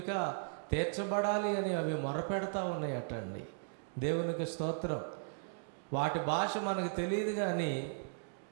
తీర్చబడాలి అని అవి మొరపెడతా ఉన్నాయటండి. దేవునికి స్తోత్రం. వాటి భాష మనకు తెలియదు, కానీ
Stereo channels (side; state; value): left; silent; digital silence